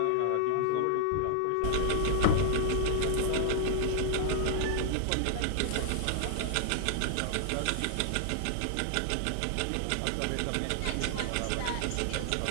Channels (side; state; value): both; different; correlation 0.00